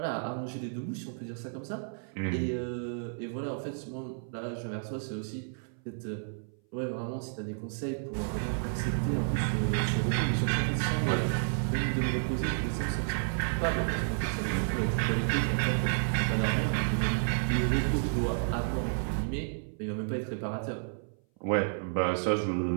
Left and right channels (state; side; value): silent; left; 57 dB below the other